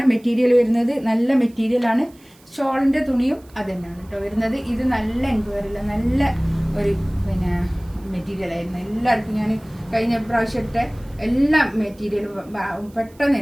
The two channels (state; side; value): noise; right; hiss, 28 dB below the sound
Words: മെറ്റീരിയൽ വരുന്നത്, നല്ല മെറ്റീരിയലാണ്. ഷോളിൻ്റെ തുണിയും അത് തന്നെയാണ് കേട്ടോ വരുന്നത്. ഇത് നല്ല എൻക്വയറില്ല, നല്ല ഒരു മെറ്റീരിയലായിരുന്നു. എല്ലാവർക്കും ഞാൻ കഴിഞ്ഞ പ്രാവശ്യം ഇട്ട എല്ലാ മെറ്റീരിയലും പെട്ടെന്ന്